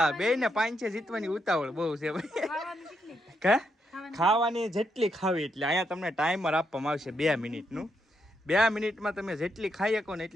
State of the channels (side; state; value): both; normal; correlation 0.80